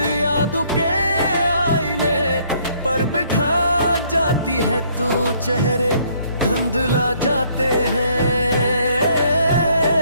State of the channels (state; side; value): inverted; both; correlation -0.64